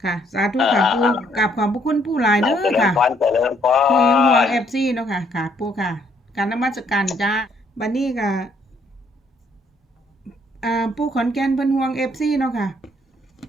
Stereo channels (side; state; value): both; normal; correlation 0.68